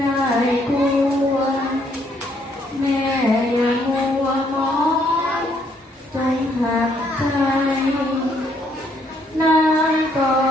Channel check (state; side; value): normal; both; correlation 0.69